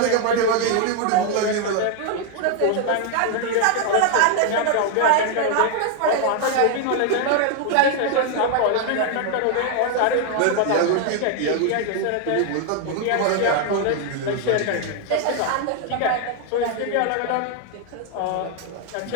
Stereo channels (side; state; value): both; different; correlation 0.01